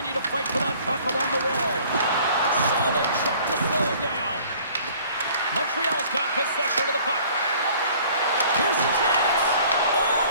to fight for that puck along the wall. Solid check to slow it down. Montreal's got possession of the puck. Here's the chance. Oh,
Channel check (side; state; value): both; inverted; correlation -0.53